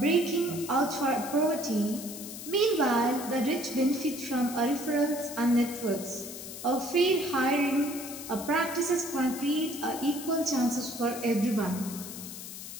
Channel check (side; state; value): left; noise; hiss, 11 dB below the sound